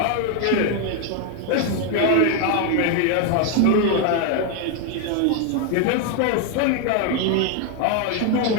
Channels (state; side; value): different; both; correlation 0.01